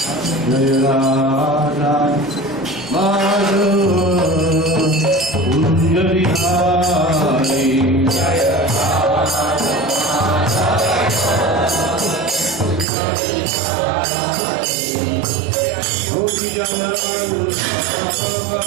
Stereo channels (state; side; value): drops out; left; at 12.9 s